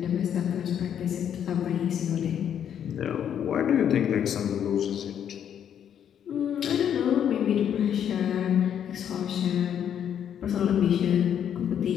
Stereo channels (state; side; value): quieter; right; 9.1 dB